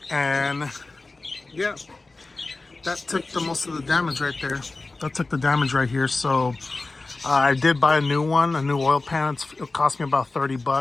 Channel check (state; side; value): quieter; right; 3.4 dB